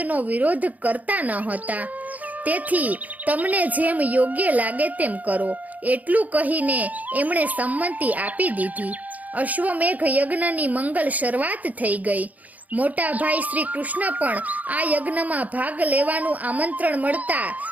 વિરોધ કરતા ન હતા. તેથી તમને જેમ યોગ્ય લાગે તેમ કરો એટલું કહીને એમણે સંમતિ આપી દીધી. અશ્વમેઘ યજ્ઞની મંગલ શરૂઆત થઈ ગઈ. મોટા ભાઈ શ્રી કૃષ્ણ પણ આ યજ્ઞમાં ભાગ લેવાનું આમંત્રણ મળતા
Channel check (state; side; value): late; left; 0.077 ms